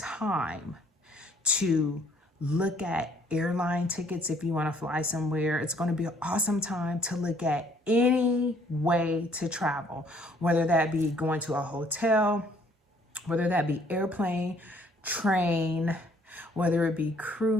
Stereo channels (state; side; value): normal; both; correlation 0.62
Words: to look at airline tickets if you want to fly somewhere. It's going to be an awesome time to look at any way to travel, whether that be going to a hotel, whether that be airplane, train, whether it be